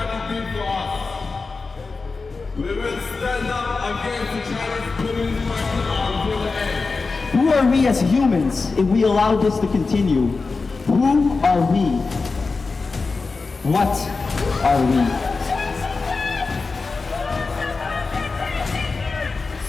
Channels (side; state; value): right; quieter; 4.2 dB